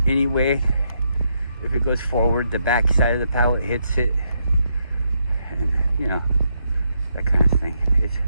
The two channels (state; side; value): inverted; both; correlation -0.78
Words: anyway. If it goes forward, the back side of the pallet hits it, and you know, that kind of thing.